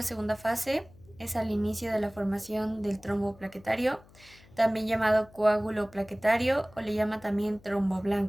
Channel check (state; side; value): noise; left; hum, 25 dB below the sound